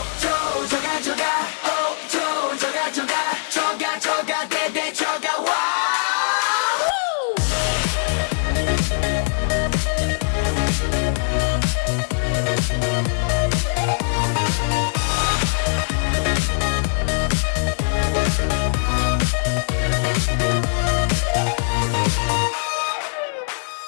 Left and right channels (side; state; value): right; silent; 65 dB below the other